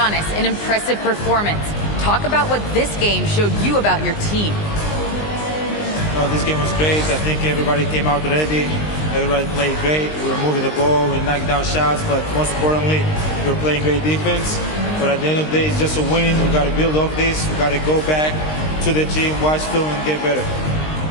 an impressive performance. Talk about what this game showed you about your team. This game was great. I think everybody came out ready. Everybody played great. We were moving the ball, we knocked down shots, but most importantly, we were playing great defense. But at the end of the day, it's just a win. We got to build off this. We got to go back to the gym, watch film, and get better.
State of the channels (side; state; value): right; late; 19 ms